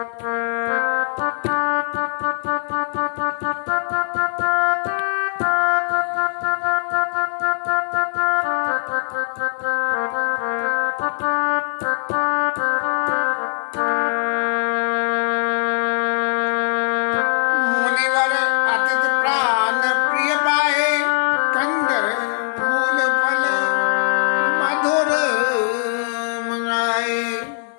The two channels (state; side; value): silent; right; 65 dB below the other